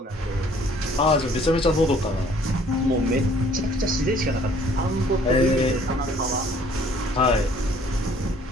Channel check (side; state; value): both; normal; correlation 0.58